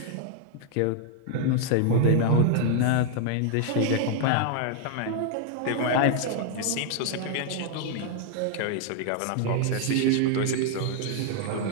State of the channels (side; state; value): both; different; correlation 0.00